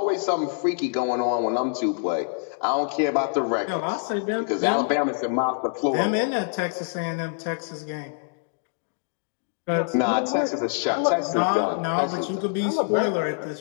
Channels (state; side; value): silent; right; digital silence